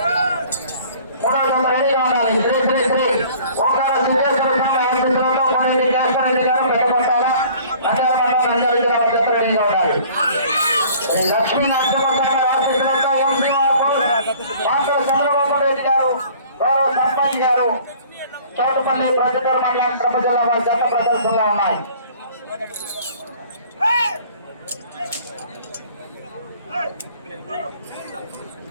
మూడో జత రెడీగా ఉండాలి. శ్రీ శ్రీ శ్రీ ఓంకార సిద్ధేశ్వర స్వామి ఆశీస్సులతో కొనేది కేశవరెడ్డి గారు పెద్దపట్టాల నంద్యాల మండలం నంద్యాల జిల్లా వారి జత రెడీగా ఉండాలి. లక్ష్మీ నరసింహస్వామి ఆశీస్సులతో ఎంసీఆర్ బోస్ మాటల చంద్రబాబు రెడ్డి గారు గౌరవ సర్పంచ్ గారు చౌటుపల్లి ప్రొద్దుటూరు మండలం కడప జిల్లా వారి జత ప్రదర్శనలో ఉన్నాయి.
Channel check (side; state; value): both; inverted; correlation -0.52